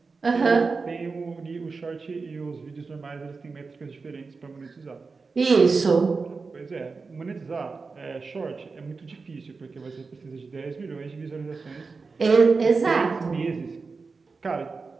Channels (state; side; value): quieter; left; 4.4 dB